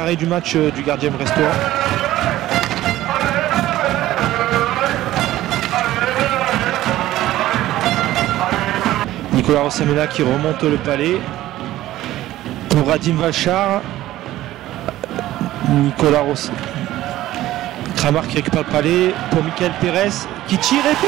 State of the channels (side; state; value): left; quieter; 14.9 dB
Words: du match du gardien brestois. Nicolas Rossamela qui remonte le palais. Pour Radim Valchar. Nicolas Rossamela. Kramar qui récupère le palais pour Michael Pérez qui tire et